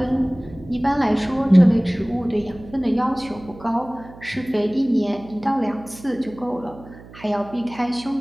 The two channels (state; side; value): noise; right; hum, 19 dB below the sound